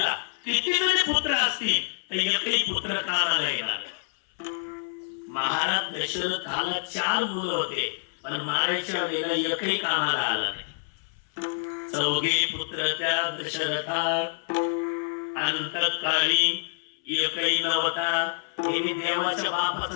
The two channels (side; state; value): right; silent; 60 dB below the other